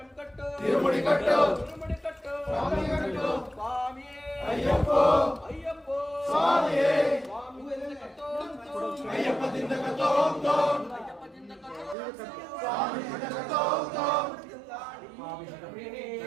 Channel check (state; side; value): drops out; left; at 12.0 s